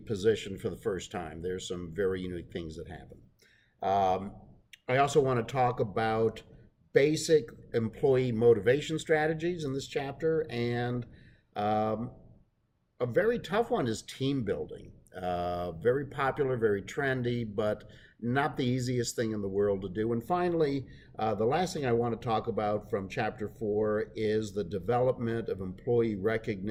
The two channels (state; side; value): identical; both; correlation 1.00